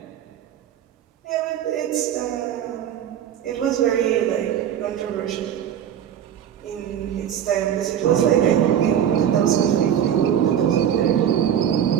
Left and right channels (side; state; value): left; quieter; 9.7 dB